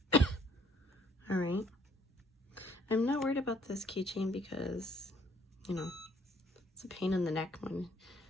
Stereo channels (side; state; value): both; normal; correlation 0.63